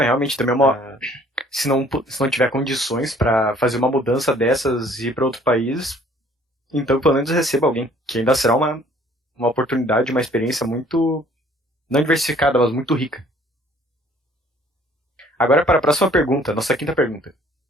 também é uma... Se não tiver condições pra fazer uma mudança dessas e ir pra outro país, então pelo menos receba alguém, que ainda será uma oportunidade, uma experiência muito, não diversificada, mas muito rica. Agora para a próxima pergunta, nossa quinta pergunta,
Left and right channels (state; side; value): normal; both; correlation 0.57